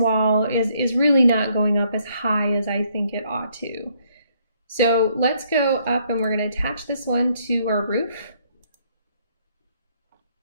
is really not going up as high as I think it ought to. So let's go up and we're going to attach this one to our roof.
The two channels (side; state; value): both; inverted; correlation -0.69